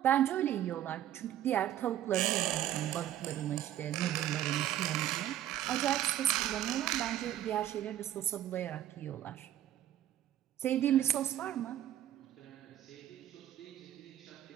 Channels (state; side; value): quieter; left; 12.1 dB